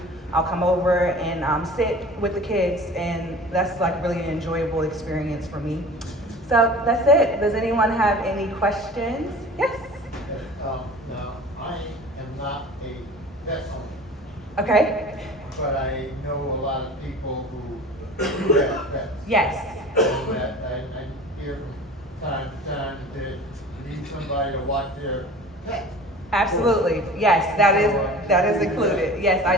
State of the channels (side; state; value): both; normal; correlation 0.41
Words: I'll come over and sit with the kids, and that's like really an enjoyable experience for me. So that's it. Does anyone have any questions? Yes? Now, I am not a pet owner. Okay. But I know a lot of people who do have pets. Yes. And that I hear from time to time that they need somebody to watch their pet. Absolutely. Yes, that is included. Yes, I